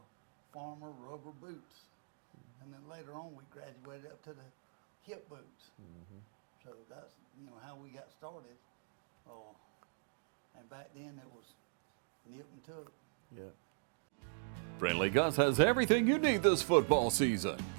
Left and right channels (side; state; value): left; silent; digital silence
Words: Farmer rubber boots. And then later on we graduated up to the hip boots. So that's how we got started. And back then it was nip and tuck. Yeah. Friendly Gus has everything you need this football season.